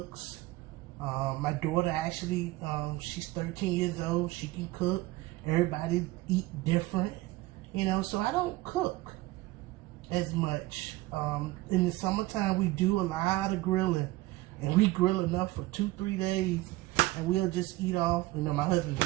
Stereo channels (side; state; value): left; quieter; 19.0 dB